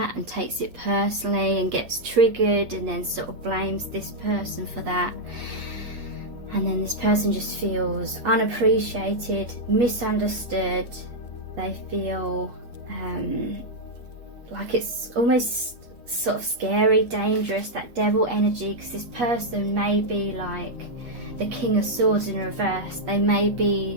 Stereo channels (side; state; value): left; late; 8.3 ms